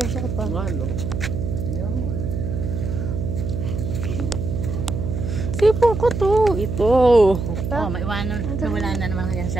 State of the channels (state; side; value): noise; right; hum, 3 dB below the sound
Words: cell phone? Ano? Tipo ko to. Ito. Oh, maiwanan. Nawala na naman kanyang